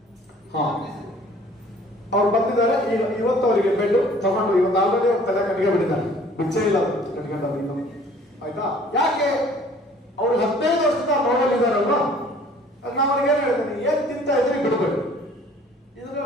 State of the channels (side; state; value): both; normal; correlation 0.53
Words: ಅವ್ರು ಬಂದಿದ್ದಾರೆ, ಇವತ್ತು ಅವರಿಗೆ ಬೆಡ್ ತಗೊಂಡು ಇವತ್ತು ಆಲ್ರೆಡಿ ಅವ್ರ ತಲೆ ಕಟ್ಗೆ ಬಿಟ್ಟಿದ್ದಾರೆ, ಬಿಚ್ಚೇ ಇಲ್ಲ ಕಟ್ಕೊಂಡವ್ರು ಇನ್ನು. ಆಯ್ತಾ? ಯಾಕೆ? ಅವ್ರು 15 ವರ್ಷದ ನೋಡಲಿದ್ದಾರಲ್ವ, ನಾನು ಅವ್ರಿಗೆ ಏನ್ ಹೇಳ್ತೀನಿ, ಏನ್ ತಿಂತ ಇದ್ರಿ ಬಿಡ್ಬೇಡಿ, ಇದ್ರ